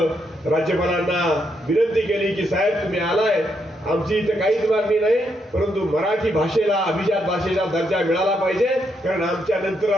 राज्यपालांना विनंती केली की साहेब तुम्ही आलाय, आमची इथं काहीच मागणी नाही परंतु मराठी भाषेला अभिजात भाषेचा दर्जा मिळाला पाहिजे. कारण आमच्या नंतर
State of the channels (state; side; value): normal; both; correlation 0.78